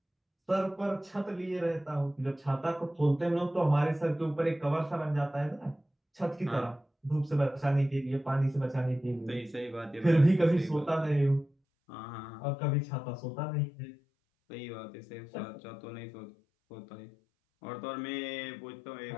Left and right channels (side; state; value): right; drops out; at 11.5 s